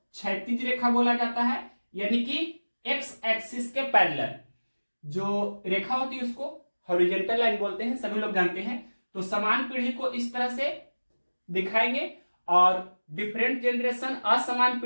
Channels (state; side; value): inverted; both; correlation -1.00